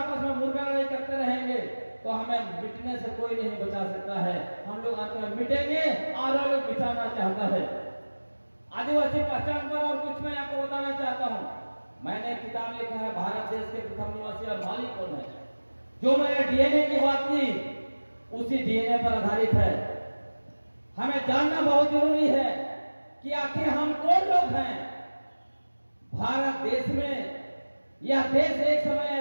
में मुर्गा लड़ाई करते रहेंगे, तो हमें मिटने से कोई नहीं बचा सकता है। हम लोग अंत में मिटेंगे और वो लोग मिटाना चाहता है। आदिवासी पहचान पर और कुछ मैं आपको बताना चाहता हूँ। मैंने किताब लिखा है भारत देश के प्रथम निवासी और मालिक कौन है। जो मैंने डीएनए की बात की उसी डीएनए पर आधारित है। हमें जानना बहुत जरूरी है कि आखिर हम कौन लोग हैं। भारत देश में, यह देश एक समय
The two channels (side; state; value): both; inverted; correlation -1.00